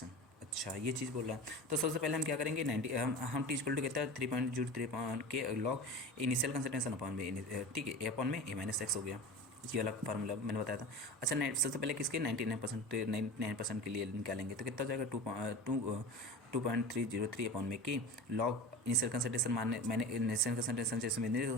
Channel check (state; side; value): normal; both; correlation 0.32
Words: अच्छा ये चीज़ बोल रहा है, तो सबसे पहले हम क्या करेंगे 90 हम टी इक्वल टू कहता है 3.03 के लॉग इनिशियल कंसंट्रेशन अपॉन में, ठीक है, A अपॉन में A - x हो गया। ये वाला फार्मूला मैंने बताया था। अच्छा, सबसे पहले किसके 99% के लिए निकालेंगे तो कितना हो जाएगा 2.303 अपॉन में की लॉग इनिशियल कंसंट्रेशन मैंने इनिशियल कंसंट्रेशन जैसे मैंने